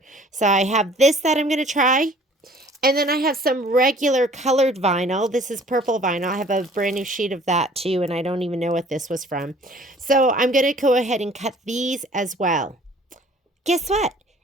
So I have this that I'm going to try. And then I have some regular colored vinyl. This is purple vinyl. I have a brand new sheet of that too, and I don't even know what this was from. So I'm going to go ahead and cut these as well. Guess what?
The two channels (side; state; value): both; normal; correlation 0.53